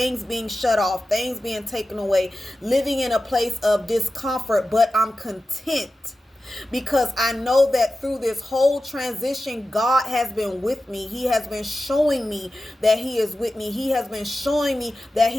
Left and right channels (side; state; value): both; normal; correlation 0.94